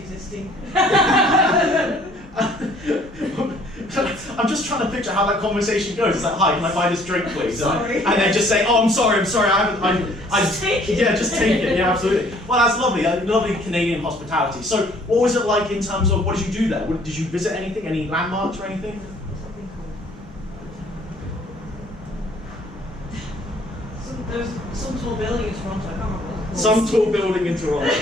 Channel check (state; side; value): normal; both; correlation 0.58